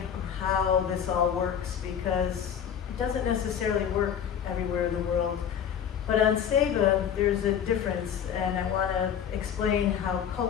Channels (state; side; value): quieter; right; 8.5 dB